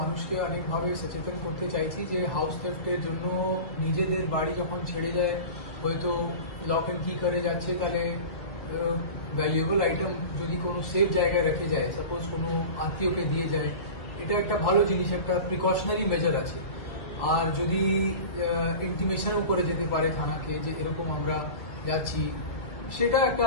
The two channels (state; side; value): late; right; 2.0 ms